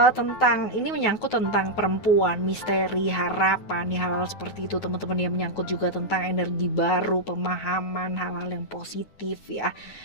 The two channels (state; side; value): late; right; 9.3 ms